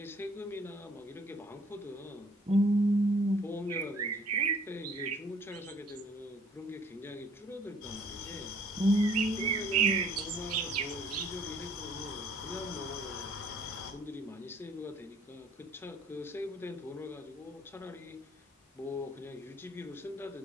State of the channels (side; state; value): both; normal; correlation 0.59